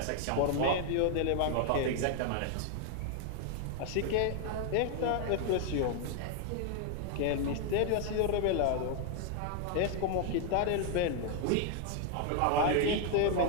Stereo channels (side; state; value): both; different; correlation 0.00